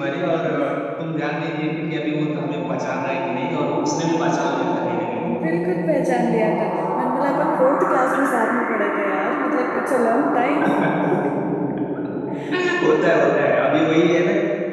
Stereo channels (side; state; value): both; identical; correlation 1.00